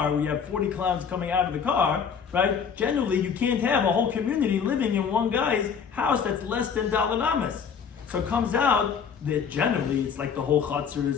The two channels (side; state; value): right; quieter; 6.7 dB